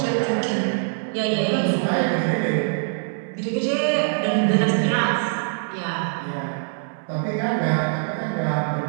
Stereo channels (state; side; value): silent; left; 63 dB below the other